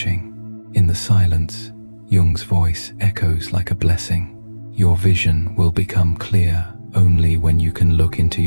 In the silence, Jung's voice echoes like a blessing. Your vision will become clear only when you can look into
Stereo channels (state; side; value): inverted; both; correlation -1.00